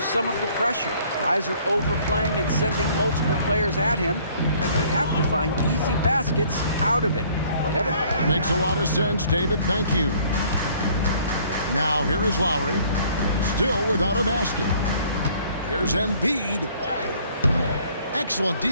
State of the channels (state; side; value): inverted; both; correlation -0.58